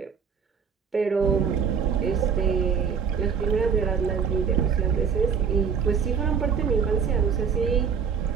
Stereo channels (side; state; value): left; quieter; 6.6 dB